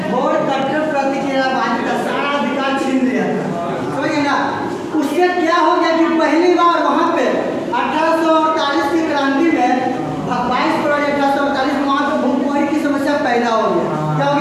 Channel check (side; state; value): both; identical; correlation 1.00